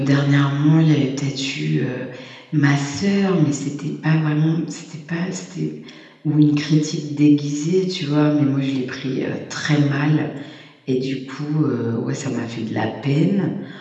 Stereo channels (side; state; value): both; identical; correlation 1.00